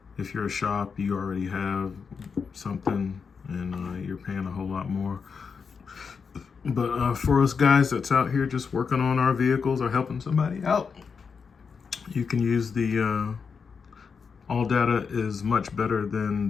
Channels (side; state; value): right; quieter; 5.7 dB